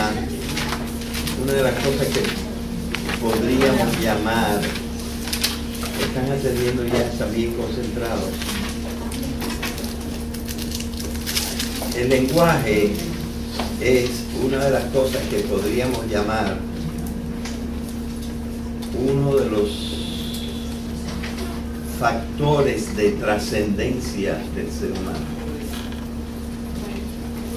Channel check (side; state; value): both; identical; correlation 1.00